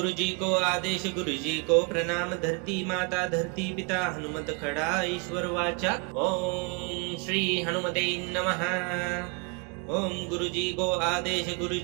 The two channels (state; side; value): quieter; left; 31.5 dB